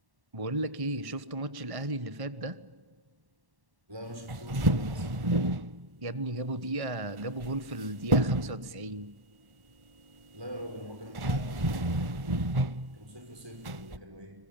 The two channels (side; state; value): left; late; 1.1 ms